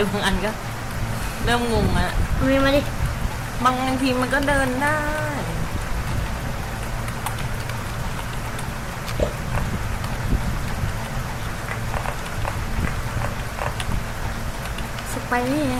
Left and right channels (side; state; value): both; identical; correlation 1.00